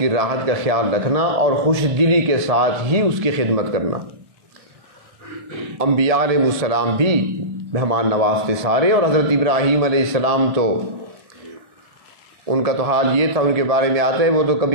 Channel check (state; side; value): late; left; 1.8 ms